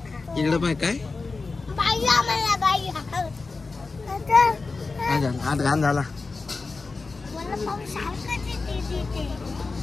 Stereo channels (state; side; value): quieter; right; 4.0 dB